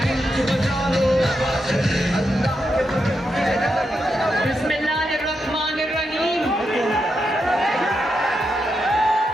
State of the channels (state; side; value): normal; both; correlation 0.85